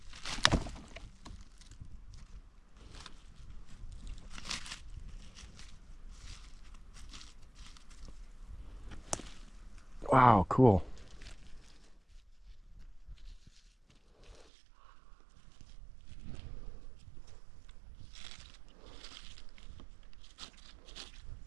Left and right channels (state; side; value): drops out; left; at 14.5 s